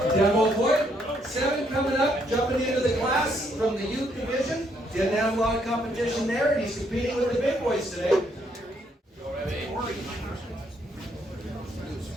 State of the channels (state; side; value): normal; both; correlation 0.72